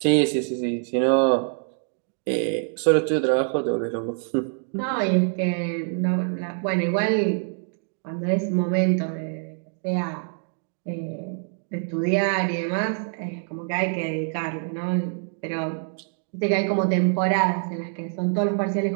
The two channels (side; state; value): left; silent; 62 dB below the other